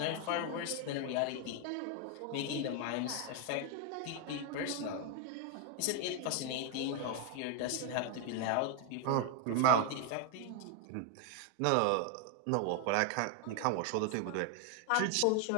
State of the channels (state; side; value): different; both; correlation 0.00